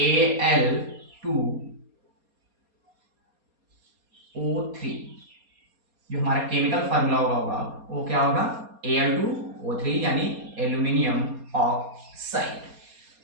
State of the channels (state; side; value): late; left; 4.2 ms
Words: जो हमारा केमिकल फार्मूला होगा वो क्या होगा, Al2O3, यानी aluminium oxide.